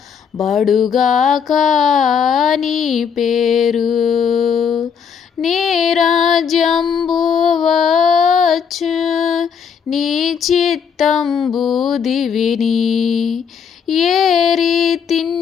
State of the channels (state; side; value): quieter; right; 7.0 dB